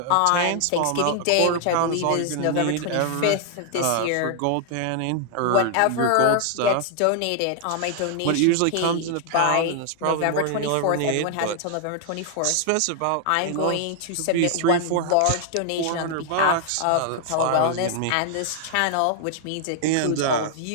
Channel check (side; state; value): both; different; correlation 0.00